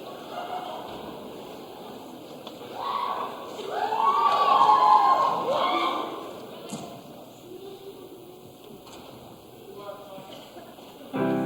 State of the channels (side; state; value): both; identical; correlation 1.00